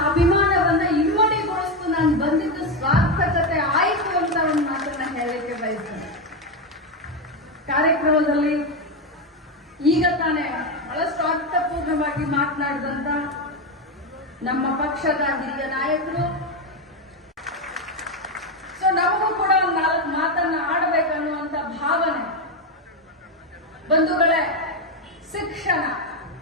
ಅಭಿಮಾನವನ್ನ ಇಮ್ಮಡಿಗೊಳಿಸ್ತು. ನಾನು ಬಂದಿದ್ದು ಸಾರ್ಥಕತೆ ಆಯಿತು ಅಂತ ಒಂದು ಮಾತನ್ನ ಹೇಳಲಿಕ್ಕೆ ಬಯಸ್ತೇನೆ. ಕಾರ್ಯಕ್ರಮದಲ್ಲಿ ಈಗ ತಾನೇ ಬಹಳಷ್ಟು ಅರ್ಥಪೂರ್ಣವಾಗಿ ಮಾತನಾಡಿದಂತ ನಮ್ಮ ಪಕ್ಷದ ಹಿರಿಯ ನಾಯಕರು, ನಮಗೂ ಕೂಡ ಒಂದು 4 ಮಾತನ್ನ ಆಡಬೇಕನ್ನುವಂತ ಭಾವನೆ. ಬಂಧುಗಳೇ, ಶಿಕ್ಷಣ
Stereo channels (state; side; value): normal; both; correlation 0.10